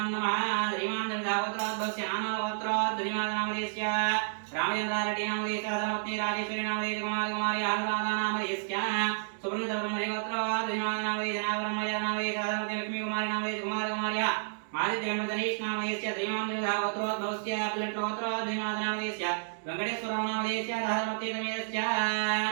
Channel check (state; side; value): silent; left; digital silence